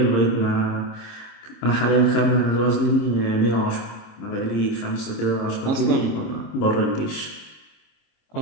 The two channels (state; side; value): late; right; 26 ms